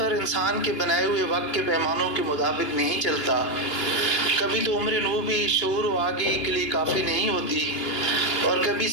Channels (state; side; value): late; right; 2.9 ms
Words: انسان کے بنائے ہوئے وقت کے پیمانوں کے مطابق نہیں چلتا. کبھی تو عمر نو بھی شعور و آگہی کے لیے کافی نہیں ہوتی، اور کبھی